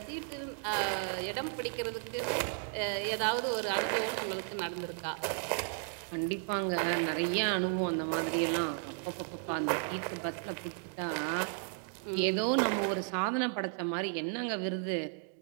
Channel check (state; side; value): silent; left; 55 dB below the other